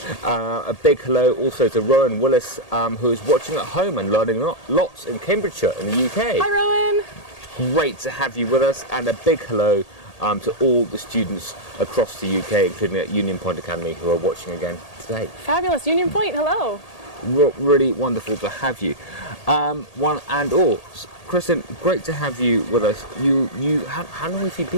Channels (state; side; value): late; right; 1.8 ms